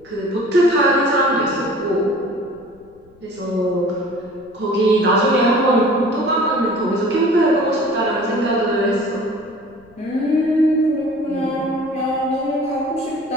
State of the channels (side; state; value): left; noise; rumble, 29 dB below the sound